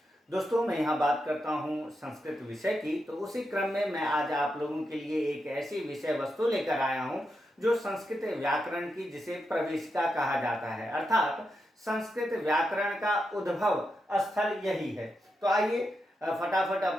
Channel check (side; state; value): both; normal; correlation 0.86